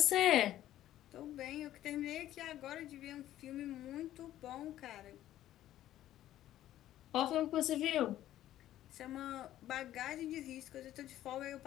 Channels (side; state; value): right; quieter; 13.1 dB